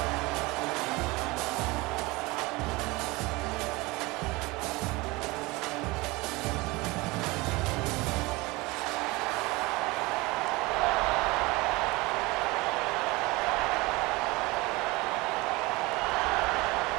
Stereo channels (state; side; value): quieter; left; 23.1 dB